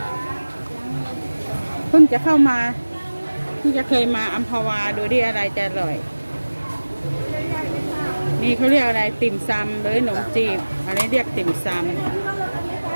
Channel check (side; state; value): both; inverted; correlation -1.00